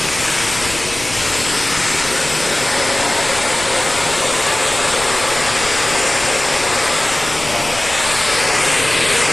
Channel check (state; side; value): noise; left; rumble, 15 dB below the sound